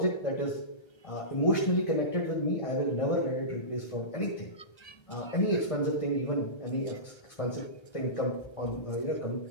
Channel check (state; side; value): late; right; 1.5 ms